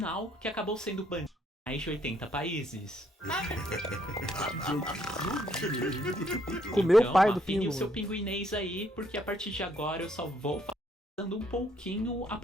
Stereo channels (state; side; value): normal; both; correlation 0.69